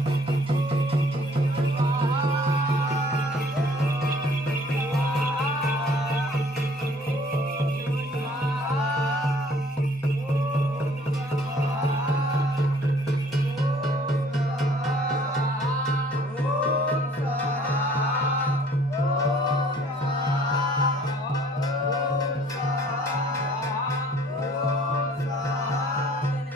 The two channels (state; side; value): normal; both; correlation 0.56